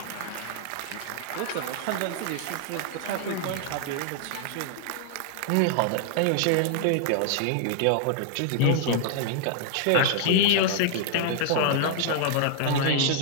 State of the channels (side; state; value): both; different; correlation -0.01